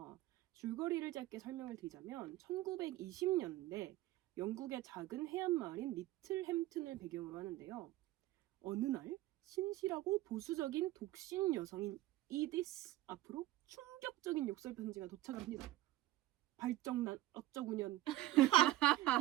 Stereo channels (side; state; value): left; quieter; 16.0 dB